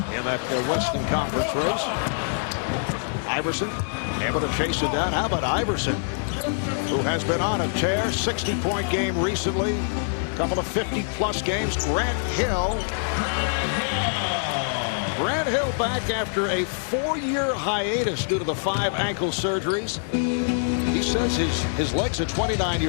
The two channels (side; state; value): right; silent; digital silence